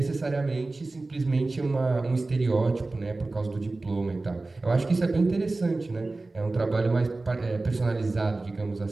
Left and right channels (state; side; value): quieter; left; 3.2 dB